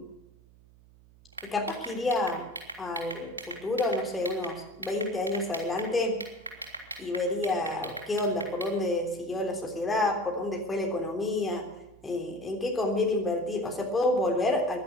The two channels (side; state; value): right; noise; hum, 25 dB below the sound